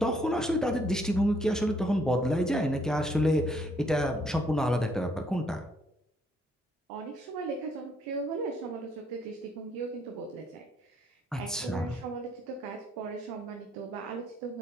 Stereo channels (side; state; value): both; normal; correlation 0.69